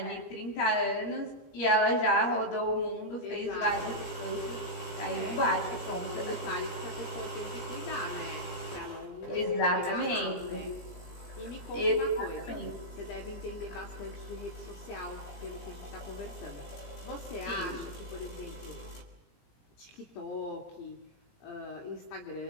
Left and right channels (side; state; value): right; late; 17 ms